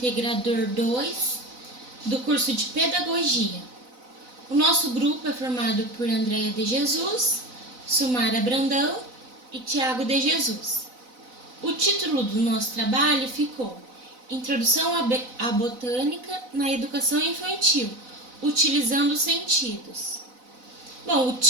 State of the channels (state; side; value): late; left; 4.0 ms